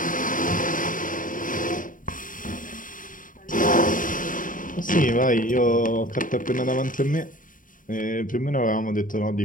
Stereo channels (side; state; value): right; late; 0.39 ms